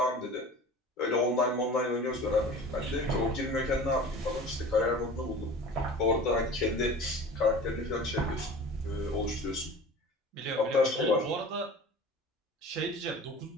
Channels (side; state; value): both; normal; correlation 0.39